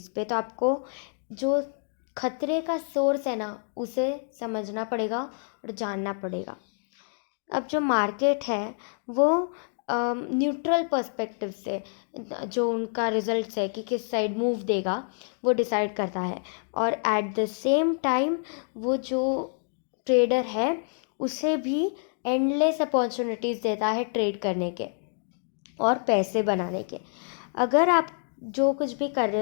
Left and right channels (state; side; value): silent; right; 60 dB below the other